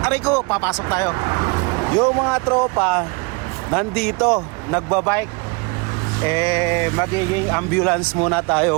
aray ko, papasok tayo. Yung mga tropa, nandito, nagbabike. Magiging ambulance muna tayo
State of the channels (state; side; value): quieter; left; 29.9 dB